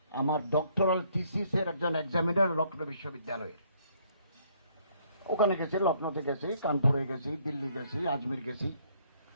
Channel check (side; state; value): both; inverted; correlation -0.66